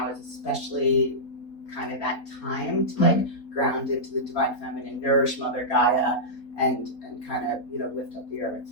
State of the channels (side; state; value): right; late; 4.4 ms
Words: is especially kind of that time to like ground into the divine feminine, nourish Mother Gaia, and kind of lift up the earth.